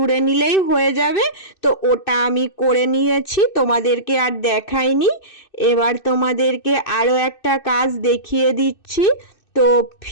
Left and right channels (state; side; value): late; right; 2.6 ms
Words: নিলেই হয়ে যাবে। তো ওটা আমি করে নিয়েছি, তোমাদেরকে আর দেখাইনি। এবার তোমাদেরকে আরও একটা কাজ দেখিয়ে দিচ্ছি। তো